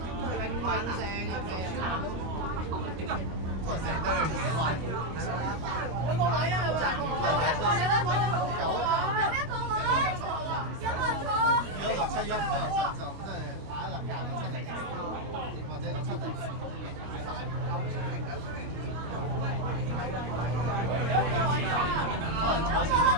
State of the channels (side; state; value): left; late; 26 ms